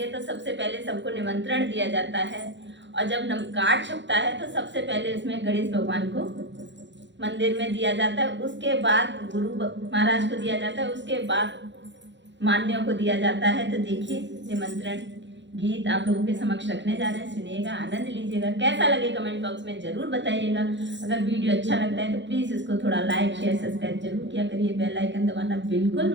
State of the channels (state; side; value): late; left; 0.53 ms